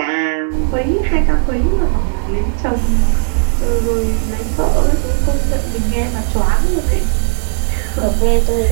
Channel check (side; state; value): left; silent; 64 dB below the other